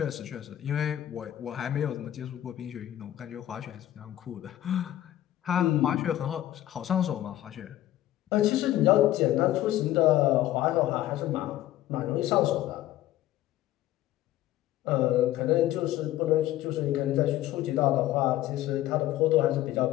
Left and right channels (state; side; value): quieter; right; 13.9 dB